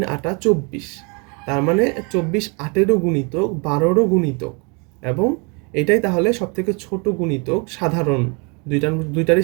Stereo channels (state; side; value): quieter; left; 32.6 dB